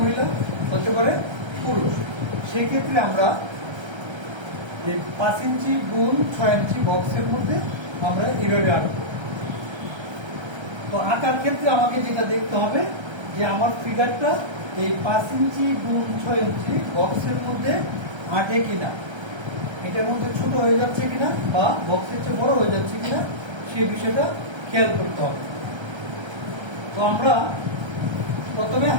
হতে পারে পুরুষ। সেক্ষেত্রে আমরা 5 ইঞ্চি গুণ 6 ইঞ্চি বক্সের মধ্যে আমরা এইভাবে আঁকবো। তো আঁকার ক্ষেত্রে আমাকে যেটা দেখতে হবে যে আমার ফিগারটা এই 5 ইঞ্চি গুণ 6 ইঞ্চি বক্সের মধ্যে আঁটে কিনা, এটার মধ্যে ছোট হয়ে যাচ্ছে কিনা বা বক্সের চেয়ে বড় হয়ে যাচ্ছে কিনা, সেই বিষয়টা খেয়াল করতে হবে। তো আমরা প্রথমে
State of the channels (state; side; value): late; left; 1.3 ms